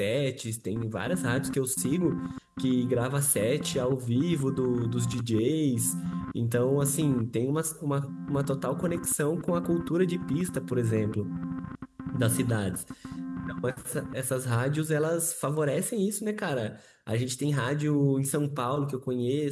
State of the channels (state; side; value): identical; both; correlation 1.00